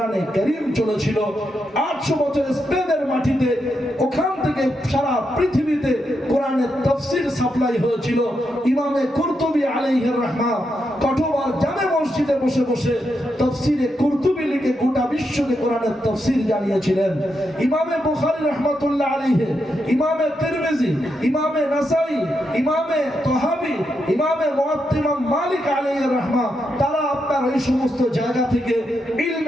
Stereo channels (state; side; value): normal; both; correlation 0.83